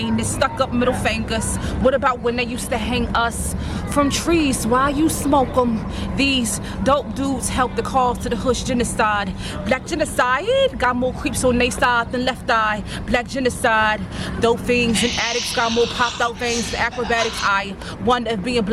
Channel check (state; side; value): identical; both; correlation 1.00